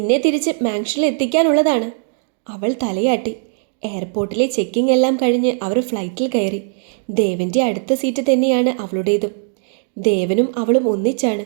തിരിച്ച് മാൻഷനിൽ എത്തിക്കാനുള്ളതാണ്. അവൾ തലയാട്ടി. എയർപോർട്ടിലെ ചെക്കിംഗ് എല്ലാം കഴിഞ്ഞ് അവർ ഫ്ലൈറ്റിൽ കയറി. ദേവൻ്റെ അടുത്ത സീറ്റ് തന്നെയാണ് അവളുടേതും. ദേവനും അവളും ഒന്നിച്ചാണ്.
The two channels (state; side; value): silent; left; digital silence